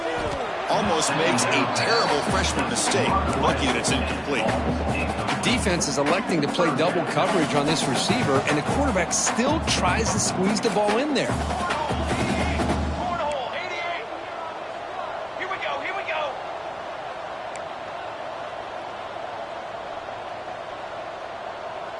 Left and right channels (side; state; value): both; identical; correlation 1.00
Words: Almost makes a terrible freshman mistake. Lucky that it's incomplete. The defense is electing to play double coverage on this receiver, and the quarterback still tries to squeeze the ball in there.